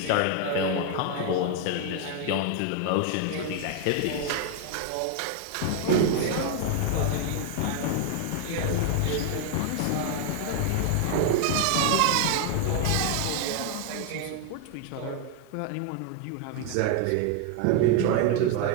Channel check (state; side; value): different; both; correlation 0.00